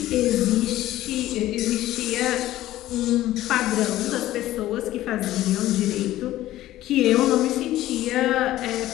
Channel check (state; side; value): quieter; right; 14.8 dB